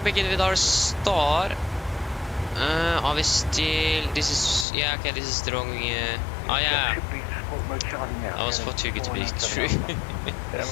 begin with our star. Are we still... This is... Yeah, okay, this is the wrong... Oh, yeah. I was for too good to be true.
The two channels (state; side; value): drops out; right; at 4.7 s